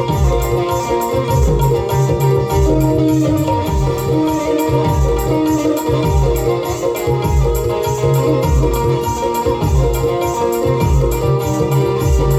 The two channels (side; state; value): both; identical; correlation 1.00